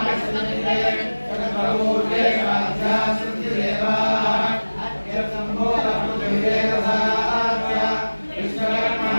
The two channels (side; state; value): both; inverted; correlation -1.00